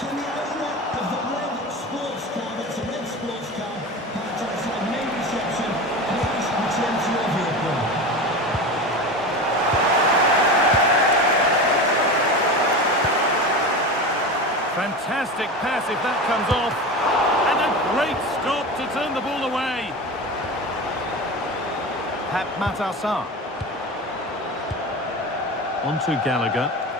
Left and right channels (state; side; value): normal; both; correlation 0.28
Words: Fantastic pass if that comes off. And a great stop to turn the ball away. Pep Matassar. On to Gallagher.